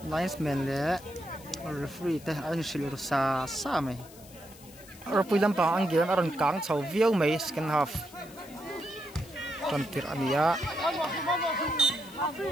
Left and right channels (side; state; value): left; noise; hiss, 21 dB below the sound